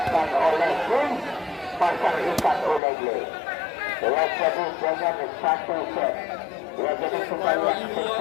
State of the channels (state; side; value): drops out; right; at 2.8 s